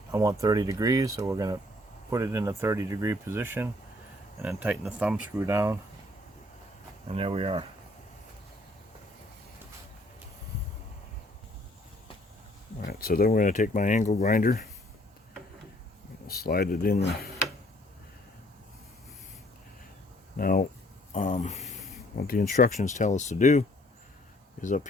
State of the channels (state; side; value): normal; both; correlation 0.62